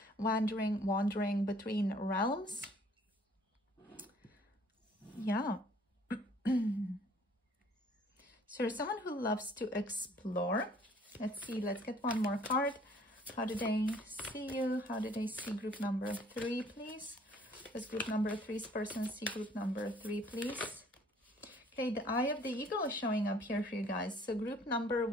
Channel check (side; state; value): both; normal; correlation 0.58